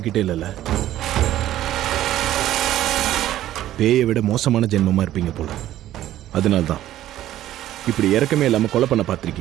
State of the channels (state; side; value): quieter; left; 13.3 dB